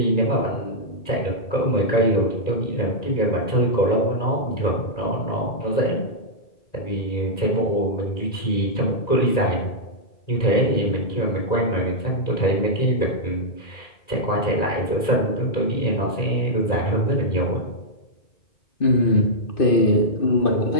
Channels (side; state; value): right; late; 1.9 ms